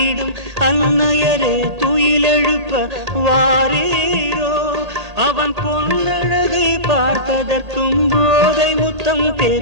அன்னையரே துயிலெழுப்ப வாரீரோ. அவன் பொன்னழகை பார்ப்பதற்கும் போதை முத்தம்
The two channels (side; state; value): left; late; 1.8 ms